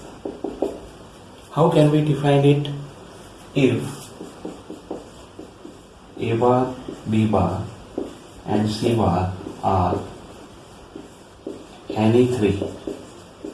How can we define it? If A bar, B bar and C bar are any three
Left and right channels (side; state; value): both; identical; correlation 1.00